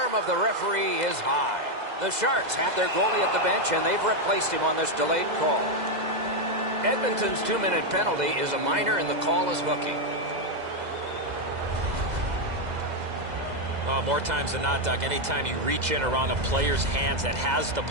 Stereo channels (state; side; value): late; left; 2.0 ms